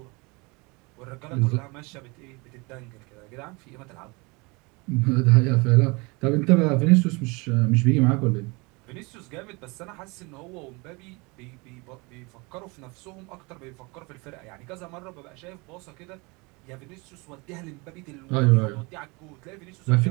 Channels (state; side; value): quieter; left; 27.3 dB